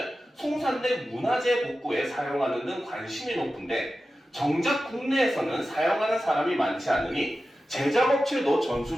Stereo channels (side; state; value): both; normal; correlation 0.93